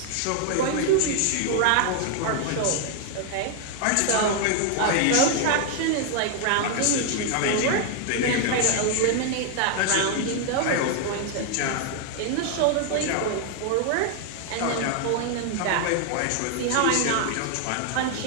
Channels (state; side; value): different; both; correlation 0.00